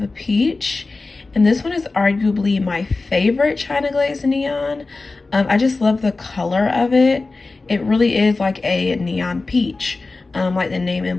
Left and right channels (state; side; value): quieter; right; 3.6 dB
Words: a Peach. And this one is arguably my favorite China Glaze neon. I just love the color of it. It really is like a neon peach, like the name